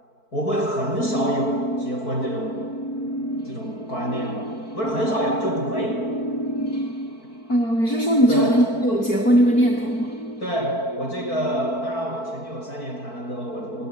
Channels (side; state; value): right; late; 4.5 ms